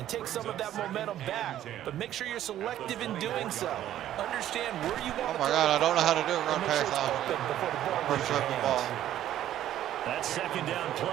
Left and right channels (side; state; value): left; quieter; 12.2 dB